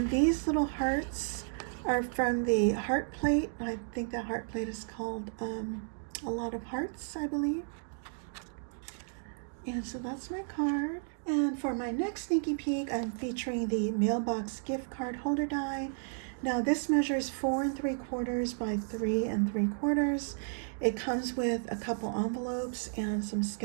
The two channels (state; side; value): silent; left; digital silence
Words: these little hearts are from the heart plate. I think that heart plate is called A Lot of Hearts, I believe. And so that's my card. And for my next sneaky peek, I'm featuring the Mailbox gift card holder die. Now this measures 4 3/4 by 3 3/4. It comes with a couple envelopes and some